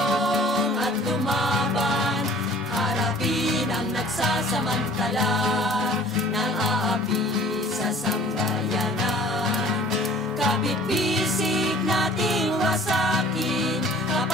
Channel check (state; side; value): normal; both; correlation 0.50